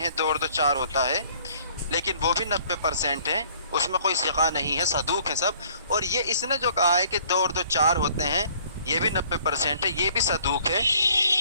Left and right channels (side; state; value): both; inverted; correlation -0.57